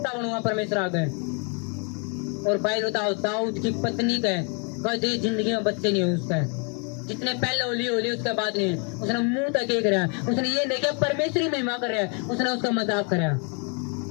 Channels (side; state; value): right; quieter; 37.2 dB